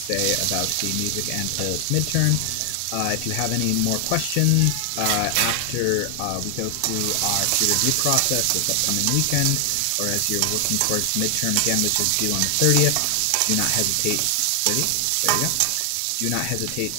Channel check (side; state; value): both; different; correlation 0.00